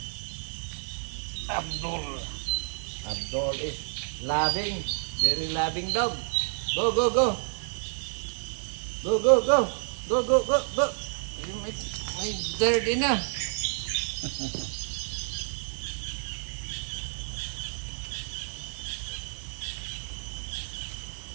Abdul. Abdul is loving. Very loving dog. Go, go, go. Go, go, go. Go, go, go, go. You make dirty na.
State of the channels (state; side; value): silent; left; 58 dB below the other